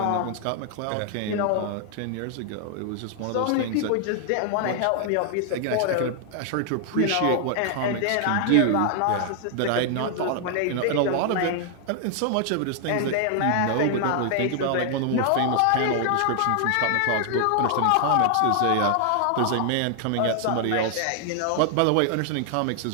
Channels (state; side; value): different; both; correlation 0.00